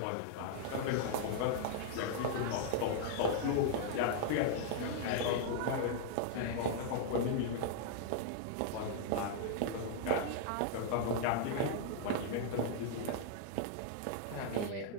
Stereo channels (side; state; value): both; different; correlation -0.01